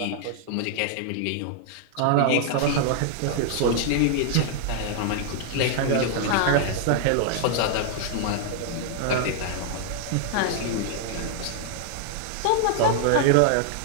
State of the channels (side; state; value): both; different; correlation 0.00